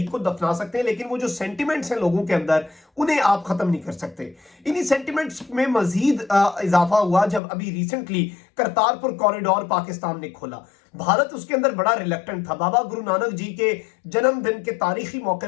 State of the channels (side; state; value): right; drops out; at 7.4 s